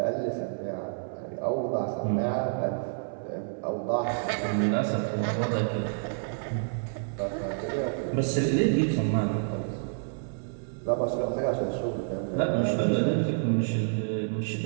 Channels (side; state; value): left; silent; 59 dB below the other